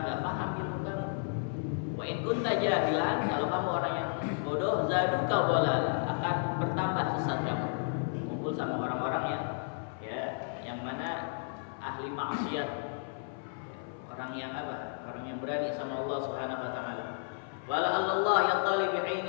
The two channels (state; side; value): silent; right; 56 dB below the other